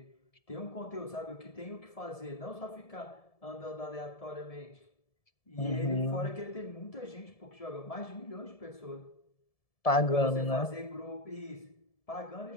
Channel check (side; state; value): right; late; 1.7 ms